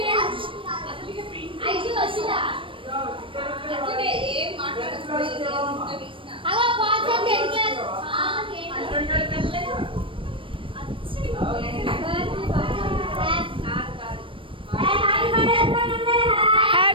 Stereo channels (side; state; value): left; late; 0.25 ms